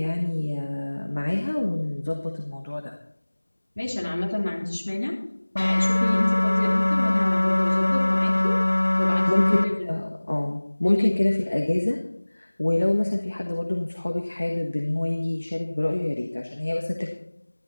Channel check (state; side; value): inverted; both; correlation -1.00